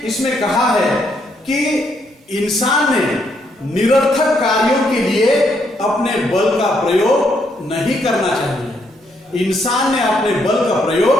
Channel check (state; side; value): normal; both; correlation 0.74